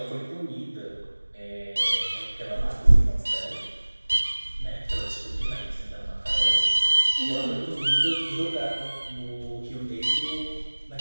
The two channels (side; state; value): both; inverted; correlation -1.00